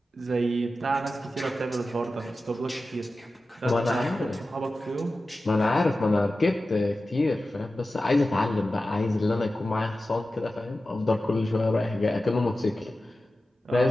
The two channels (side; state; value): both; normal; correlation 0.94